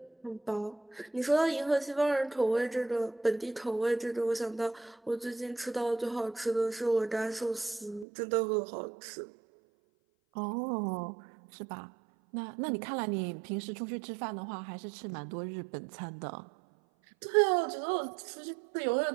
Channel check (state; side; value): drops out; left; at 8.1 s